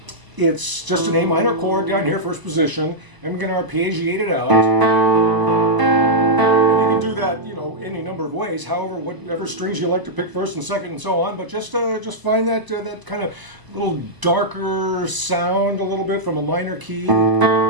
It's just an A minor chord down here, first position, and we're going to arpeggiate it out. Do that, any number of ways. However, whatever strings you like to pick first and second and so on. But just find that kind of little darker sound a little bit from a minor key. And then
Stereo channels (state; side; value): late; left; 1.0 ms